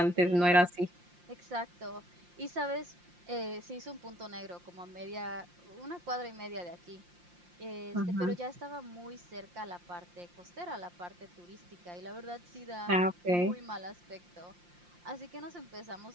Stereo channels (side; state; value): left; late; 5.7 ms